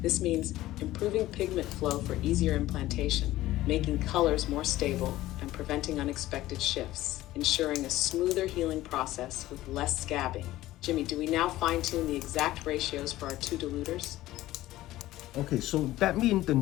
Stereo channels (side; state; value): right; quieter; 15.9 dB